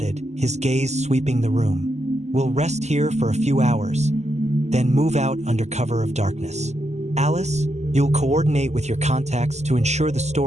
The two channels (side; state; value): left; late; 0.33 ms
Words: his gaze sweeping the room. We'll rest here for a few hours, then move out under cover of darkness. Alice, you'll coordinate with your contacts to ensure the